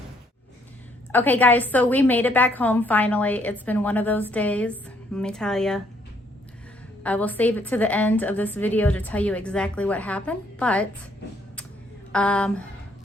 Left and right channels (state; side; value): normal; both; correlation 0.68